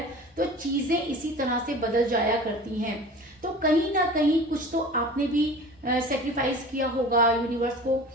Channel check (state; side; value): normal; both; correlation 0.39